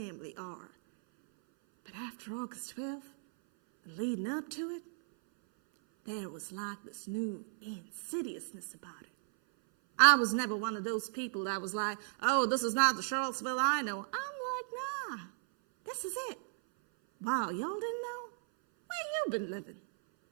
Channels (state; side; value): silent; left; 54 dB below the other